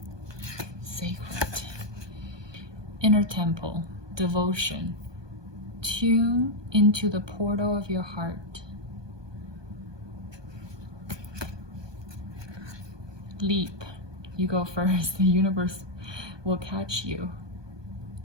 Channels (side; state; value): left; late; 1.2 ms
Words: Sacred. Inner temple, devotion. Tune into the portal of your heart. Leap. You go first. The universe will catch you.